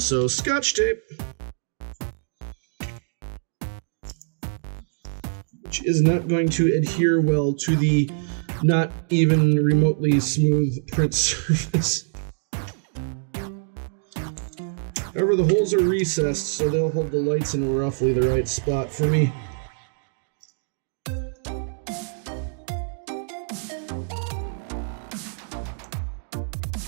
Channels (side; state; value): left; silent; digital silence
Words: Scotch tape. Which is not going to adhere well to the not even remotely smooth print surface. However, the holes are recessed, so they'll hold the lights in roughly the right spot for me.